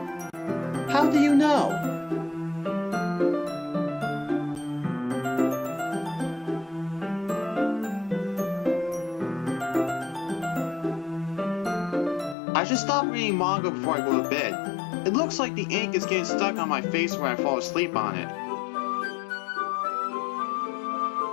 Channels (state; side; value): drops out; right; at 12.4 s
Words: How do you know? I should stop reading manga before I go to bed. It looks like the ink is getting stuck on my face when I fall asleep on it.